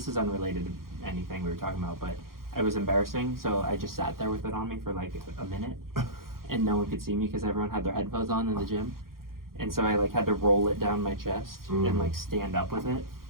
is unrelated to anything we were talking about, but it was embarrassing, so I just sat there with it on me for like a minute, and no one could see me because everyone had their headphones on in the gym, and so I like had to roll it down my chest and like stand up with it.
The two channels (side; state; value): left; late; 0.92 ms